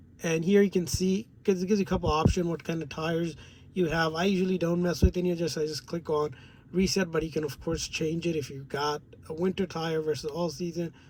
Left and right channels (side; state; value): both; identical; correlation 1.00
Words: and here you can see, because it gives you a couple options what kind of tires you have. I usually don't mess with any of this. I just click on reset, but you can of course change it if you got a winter tire versus all season.